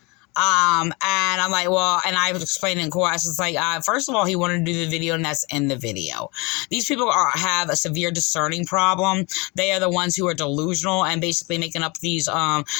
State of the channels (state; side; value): quieter; right; 27.3 dB